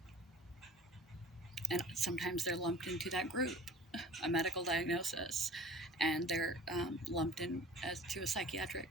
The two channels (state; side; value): normal; both; correlation 0.44